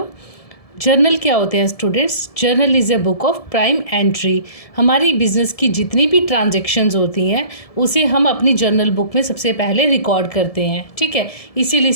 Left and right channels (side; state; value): right; late; 1.7 ms